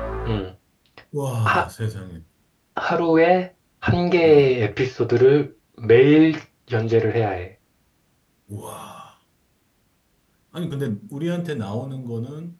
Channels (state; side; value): identical; both; correlation 1.00